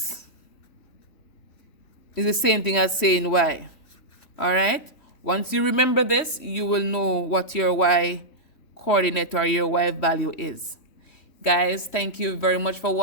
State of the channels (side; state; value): right; late; 3.1 ms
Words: is the same thing as saying y. All right? Once you remember this, you will know what your y coordinate or your y value is. Guys, thank you very much for